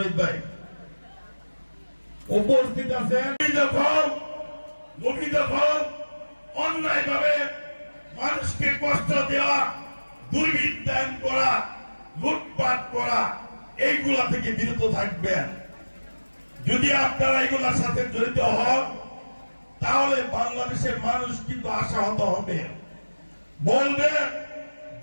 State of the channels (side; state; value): both; inverted; correlation -1.00